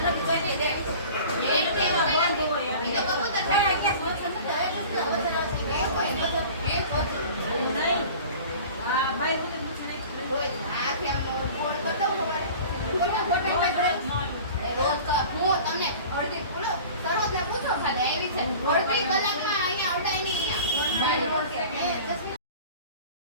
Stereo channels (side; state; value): both; inverted; correlation -0.41